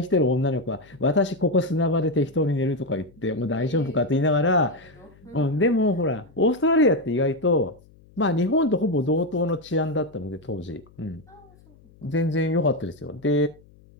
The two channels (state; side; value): noise; left; hum, 27 dB below the sound